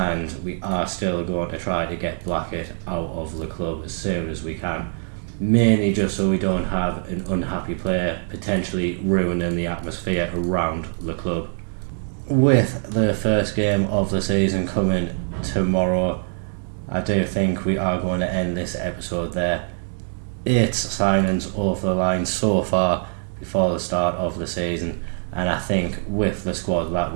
we are still going to try to get Blackett out of the club as soon as we can, mainly just so we don't have an unhappy player potentially ruining the atmosphere around the club. With the first game of the season coming tomorrow, I do think we are going to end this episode there. 8 signings over the line so far before the start of the season, and I think with the squad that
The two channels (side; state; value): left; silent; 63 dB below the other